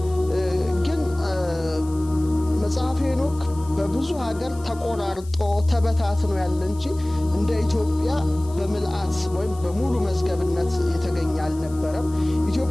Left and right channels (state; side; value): noise; left; hiss, 22 dB below the sound